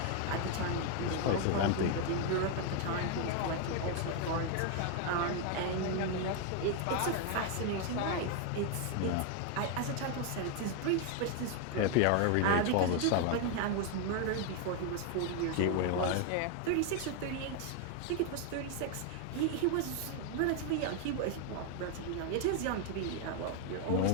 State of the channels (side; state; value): both; different; correlation 0.01